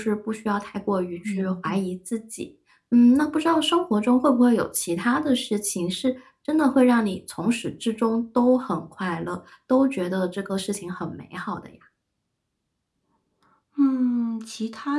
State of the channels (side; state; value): both; identical; correlation 1.00